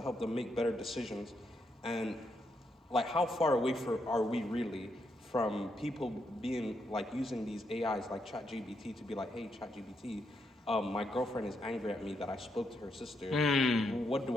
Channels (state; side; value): normal; both; correlation 0.79